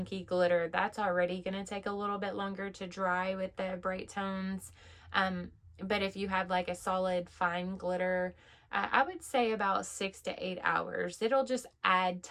glitter, that's already going to take a little bit longer to dry with the Brite Tones. But if you have like a solid fine glitter, I would say about 6 to 8 hours. It'll just add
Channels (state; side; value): identical; both; correlation 1.00